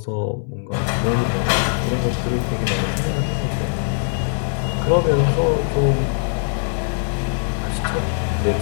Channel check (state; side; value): silent; right; digital silence